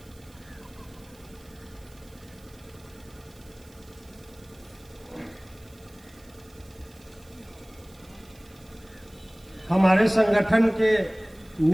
हमारे संगठन के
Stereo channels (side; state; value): right; noise; hiss, 26 dB below the sound